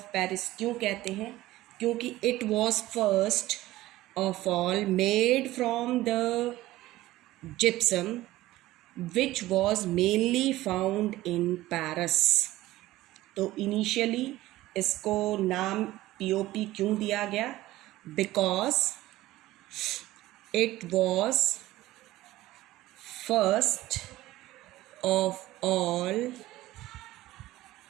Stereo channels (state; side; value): quieter; left; 16.6 dB